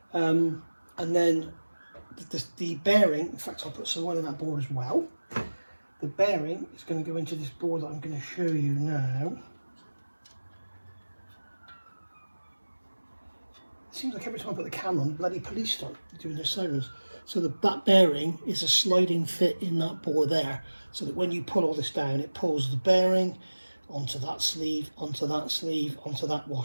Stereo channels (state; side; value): inverted; both; correlation -1.00